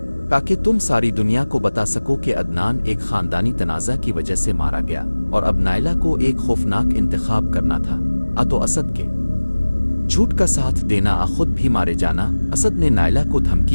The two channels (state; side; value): inverted; both; correlation -1.00